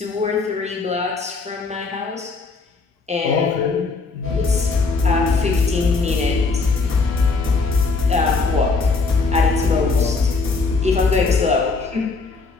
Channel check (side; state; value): right; quieter; 4.1 dB